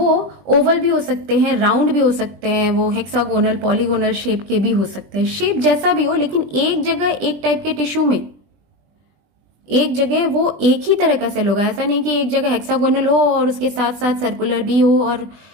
ओवल भी हो सकते हैं, राउंड भी हो सकते हैं, वो हेक्सागोनल, पॉलीगोनल शेप के भी हो सकते हैं। शेप जैसा भी हो, लेकिन एक जगह एक टाइप के टिश्यू में एक जगह वो एक ही तरह का सेल होगा। ऐसा नहीं कि एक जगह हेक्सागोनल हो और उसके साथ साथ सर्कुलर भी हो और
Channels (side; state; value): left; late; 20 ms